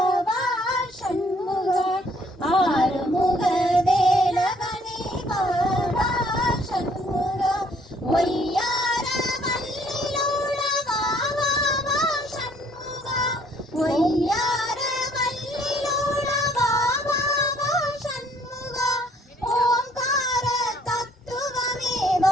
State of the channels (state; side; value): normal; both; correlation 0.62